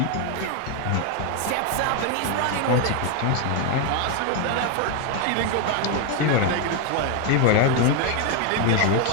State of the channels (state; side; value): different; both; correlation 0.01